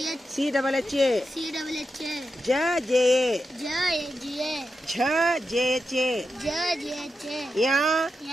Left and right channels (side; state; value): both; normal; correlation 0.88